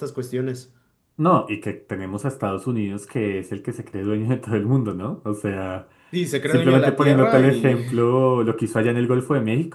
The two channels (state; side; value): identical; both; correlation 1.00